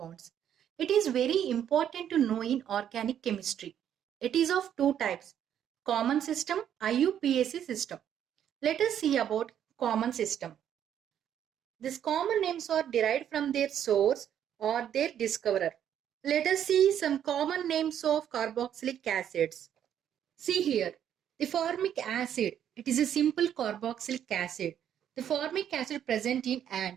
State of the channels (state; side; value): quieter; left; 9.8 dB